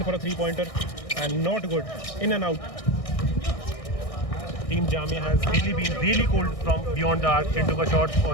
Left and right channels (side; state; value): right; late; 1.6 ms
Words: for a 3 pointer and not good, in and out. Team Jamia has really been really cold from beyond the arc. Chintu का शॉट